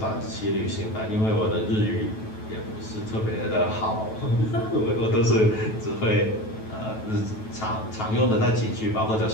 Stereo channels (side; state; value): right; late; 9.2 ms